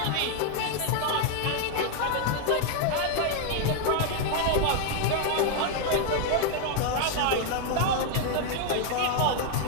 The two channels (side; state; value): both; different; correlation 0.01